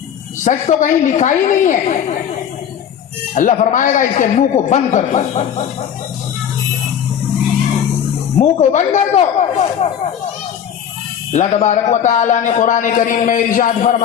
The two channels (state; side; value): quieter; right; 8.8 dB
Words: सच तो कहीं लिखा ही नहीं है। अल्लाह फरमाएगा इसके मुंह को बंद कर दो, मुंह को बंद कर दो। अल्लाह तबारक व तआला ने कुरान करीम में इरशाद